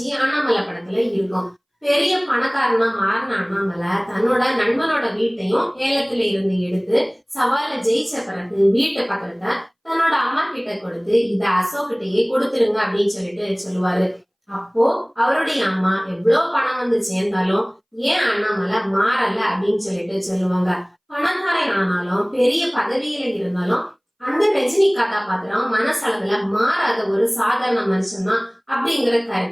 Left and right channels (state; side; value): identical; both; correlation 1.00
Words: அண்ணாமலை படத்துல இருக்கும். பெரிய பணக்காரனா மாறின அண்ணாமலை தன்னோட நண்பனோட வீட்டையும் ஏலத்துல இருந்து எடுத்து சவால ஜெயிச்ச பிறகு வீட்டு பக்கத்தை தன்னோட அம்மா கிட்ட கொடுத்து இத அசோக்கிட்டயே கொடுத்துருங்க அப்படின்னு சொல்லிட்டு சொல்லுவாரு. அப்போ அவருடைய அம்மா எவ்வளவு பணம் வந்து சேர்ந்தாலும் ஏன் அண்ணாமலை மாறல அப்படின்னு சொல்லிட்டு சொல்லுவாங்க. பணக்காரன் ஆனாலும் பெரிய பதவியில இருந்தாலும் அந்த ரஜினி கதாபாத்திரம் மனசளவுல மாறாத ஒரு சாதாரண மனுஷன் தான் அப்படிங்கிற